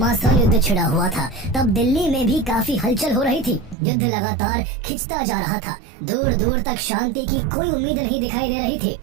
युद्ध छिड़ा हुआ था, तब दिल्ली में भी काफी हलचल हो रही थी। युद्ध लगातार खिंचता जा रहा था। दूर दूर तक शांति की कोई उम्मीद नहीं दिखाई दे रही थी।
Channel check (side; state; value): left; drops out; at 3.8 s